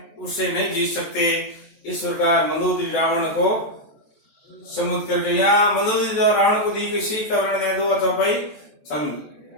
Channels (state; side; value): late; right; 14 ms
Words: उससे नहीं जीत सकते। इस प्रकार मंदोदरी रावण को समुद्र करके यहाँ मंदोदरी रावण को दी गई सीख का वर्णन है 2 चौपाई छंद।